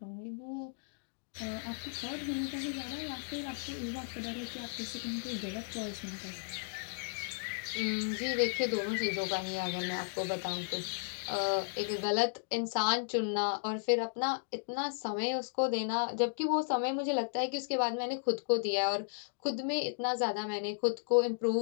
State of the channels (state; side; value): silent; right; digital silence